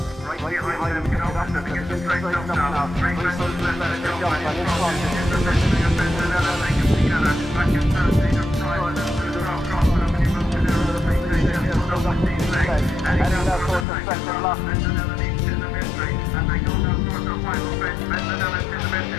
Right behind them, after they get straight up now. Three close to the left, they jump and in front. The mystery of Bendanella, they come together. Back in third, they just try to cross them, and he moves to their other feet. They just pull up these legs. And he goes down towards the second lap. Bendanella leads to the mystery, and they go down towards the final stretch. Bendanella to the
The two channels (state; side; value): drops out; right; at 13.9 s